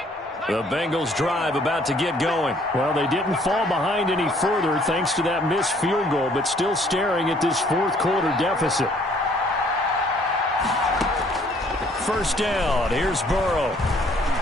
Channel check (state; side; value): normal; both; correlation 0.61